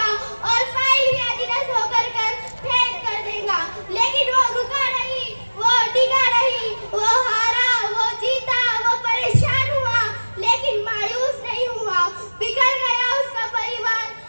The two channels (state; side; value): inverted; both; correlation -1.00